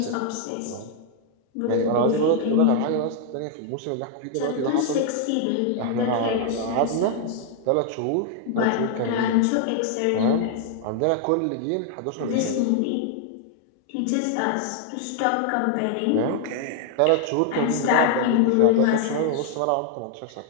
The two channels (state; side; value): different; both; correlation 0.00